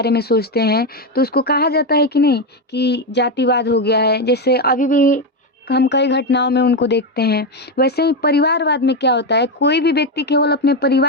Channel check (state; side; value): normal; both; correlation 0.10